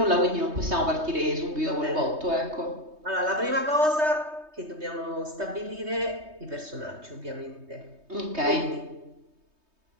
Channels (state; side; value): late; left; 3.2 ms